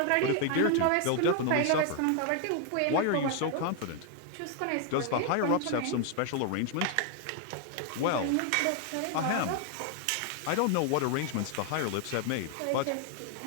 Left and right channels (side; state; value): both; different; correlation 0.00